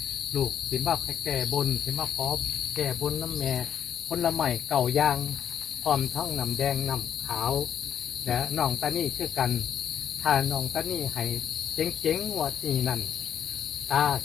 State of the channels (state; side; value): quieter; right; 9.0 dB